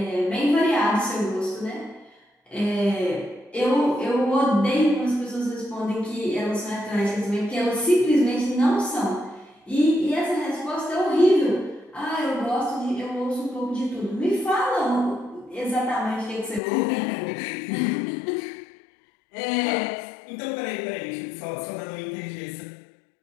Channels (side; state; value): right; drops out; at 16.6 s